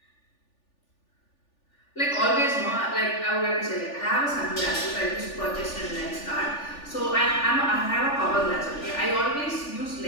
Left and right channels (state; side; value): late; right; 3.4 ms